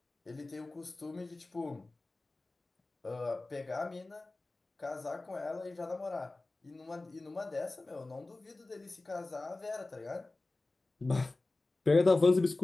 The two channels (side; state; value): right; quieter; 3.1 dB